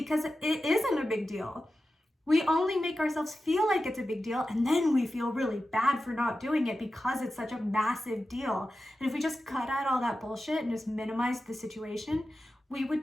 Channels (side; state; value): both; normal; correlation 0.93